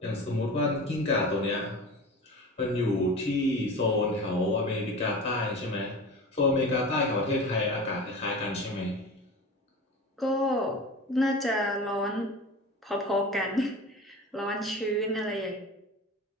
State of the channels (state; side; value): normal; both; correlation 0.33